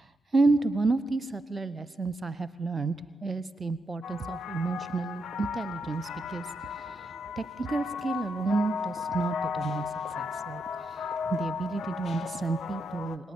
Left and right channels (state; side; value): normal; both; correlation 0.82